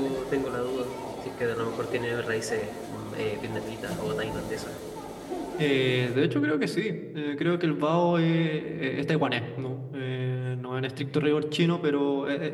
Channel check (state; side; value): identical; both; correlation 1.00